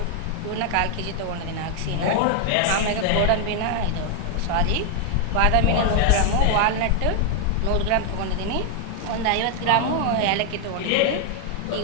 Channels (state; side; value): different; both; correlation 0.00